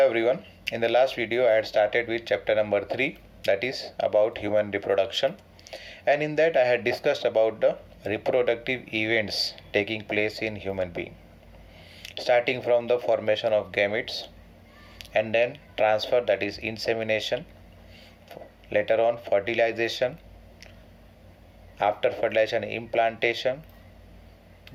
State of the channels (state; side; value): identical; both; correlation 1.00